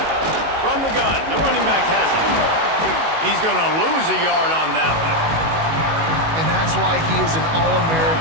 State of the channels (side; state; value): left; late; 19 ms